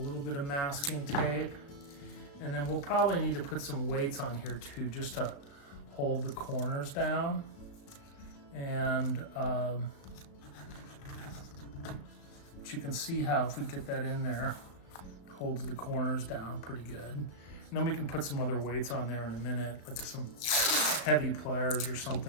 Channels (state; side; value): late; right; 35 ms